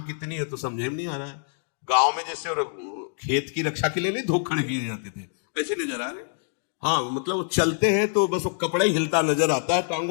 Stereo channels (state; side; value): silent; right; digital silence